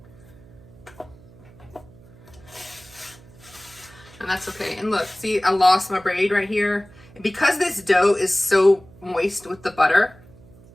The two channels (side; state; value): right; noise; hum, 23 dB below the sound